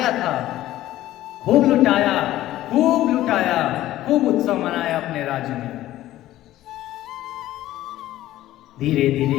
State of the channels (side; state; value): right; quieter; 14.6 dB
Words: था, खूब लुटाया, खूब लुटाया, खूब उत्सव मनाया अपने राज्य में। धीरे